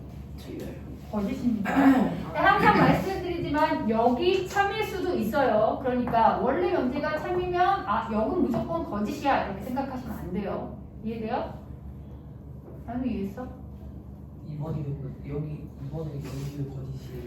틀려요. 거짓입니다. 항상 말씀드리지만 여기 참일 수도 있어요. 그러니까 원래 명제가 참이면 역은 무조건 거짓이야 이렇게 생각하시면 안 돼요. 이해돼요? 나는 이해했어? 이번에 여기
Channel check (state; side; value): identical; both; correlation 1.00